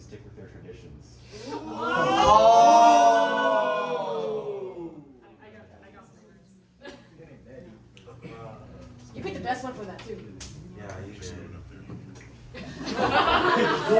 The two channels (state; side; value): identical; both; correlation 1.00